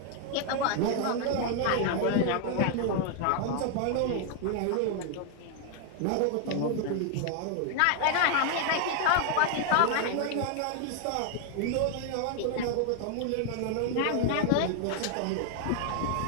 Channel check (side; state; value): both; different; correlation 0.00